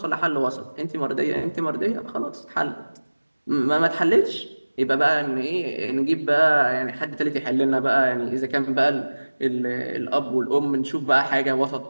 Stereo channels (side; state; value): both; inverted; correlation -1.00